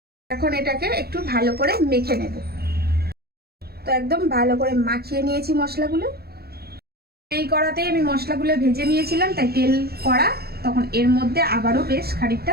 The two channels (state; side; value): late; left; 0.46 ms